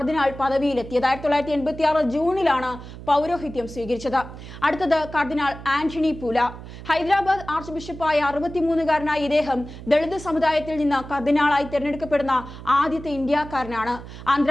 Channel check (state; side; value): noise; right; hum, 14 dB below the sound